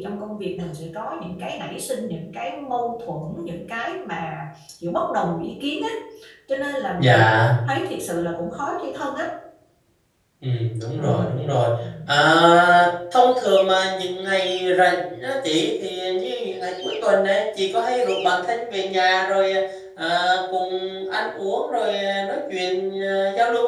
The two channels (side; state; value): both; identical; correlation 1.00